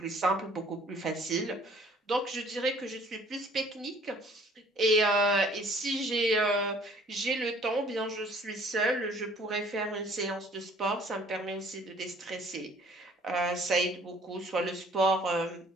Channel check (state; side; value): normal; both; correlation 0.56